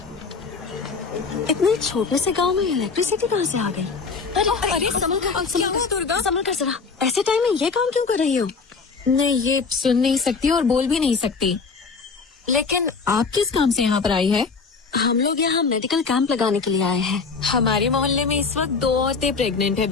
इतने छोटे से गांव में इलेक्ट्रिसिटी कहाँ से आ गई? अरे संभल कर जरा। ऐसे टाइम में ये काम क्यों कर रही हो? नहीं, ये सुन नहीं सकती और बोल भी नहीं सकती। लेकिन आप किस काम से यहाँ पर आई है? हम लोग यहाँ मेडिकल कैंप लगाने के लिए आए हैं। हमारे मोहल्ले में इस वक्त 2 औरतें प्रेग्नेंट है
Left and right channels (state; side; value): quieter; right; 4.8 dB